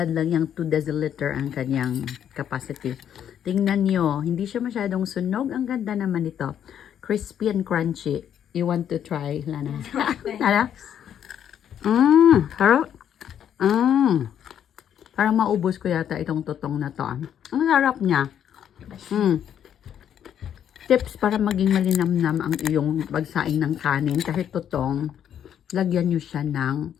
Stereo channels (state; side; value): quieter; right; 9.5 dB